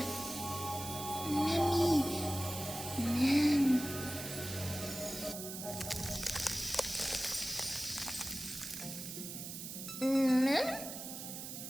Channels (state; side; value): noise; right; hiss, 8 dB below the sound